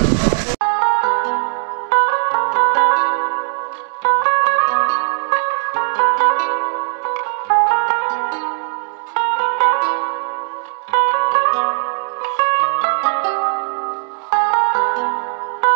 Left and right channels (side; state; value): left; silent; 55 dB below the other